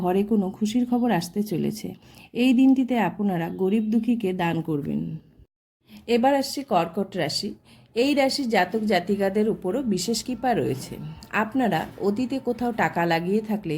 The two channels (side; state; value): both; identical; correlation 1.00